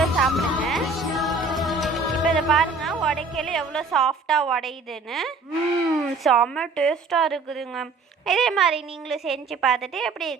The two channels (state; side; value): quieter; left; 3.9 dB